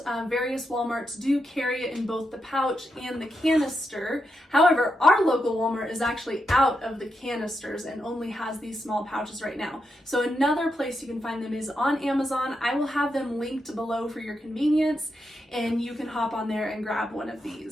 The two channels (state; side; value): normal; both; correlation 0.84